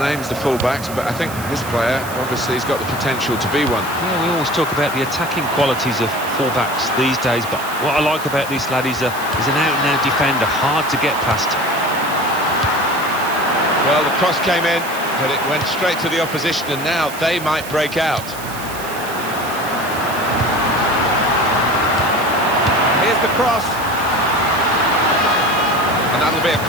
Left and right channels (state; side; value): noise; right; hiss, 13 dB below the sound